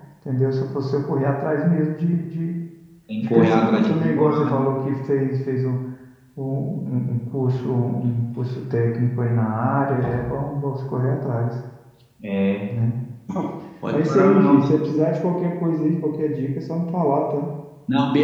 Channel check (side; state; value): both; identical; correlation 1.00